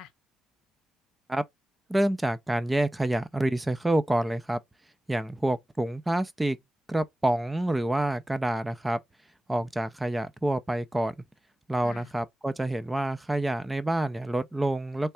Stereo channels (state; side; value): normal; both; correlation 0.97